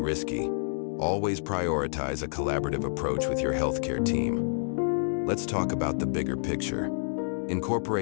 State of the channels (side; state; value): right; silent; digital silence